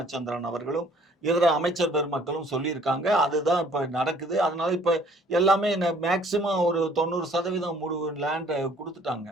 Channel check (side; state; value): both; normal; correlation 0.58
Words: அவர்களும் இதர அமைச்சர் பெருமக்களும் சொல்லியிருக்காங்க. அதுதான் இப்ப நடக்குது. அதனால இப்ப எல்லாமே மேக்சிமம் ஒரு 90% லேண்ட் கொடுத்துட்டாங்க.